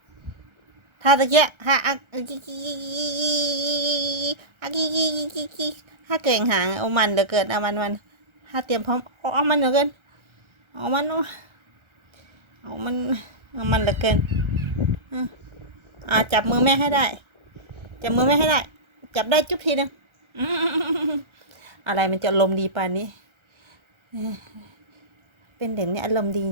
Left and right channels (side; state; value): left; late; 1.3 ms